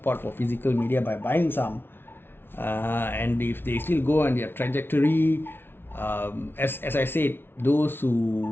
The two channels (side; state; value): right; late; 0.11 ms